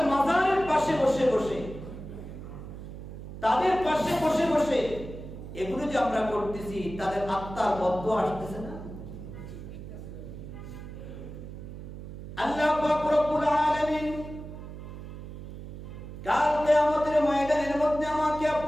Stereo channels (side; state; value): right; noise; hum, 11 dB below the sound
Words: মাজারের পাশে বসে বসে, তাদের পাশে বসে বসে এগুলো যে আমরা করতেছি, তাদের আত্মার বদদোয়া আসতেছে না? আল্লাহ পাক রব্বুল আলামিন কাল কিয়ামতের ময়দানের মধ্যে আমাকে